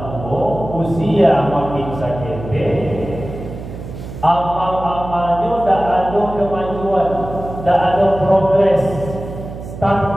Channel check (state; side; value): noise; right; hum, 11 dB below the sound